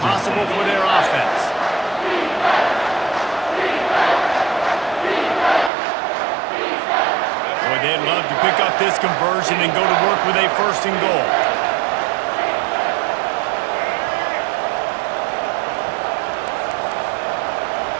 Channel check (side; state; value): left; drops out; at 5.7 s